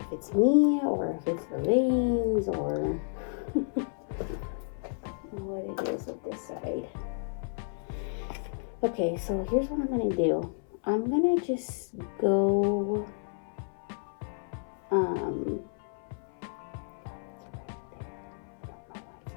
it's me or if it's the veins or what it is with this side. Okay, so here's what I'm gonna do. I'm gonna just go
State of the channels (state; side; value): silent; right; 57 dB below the other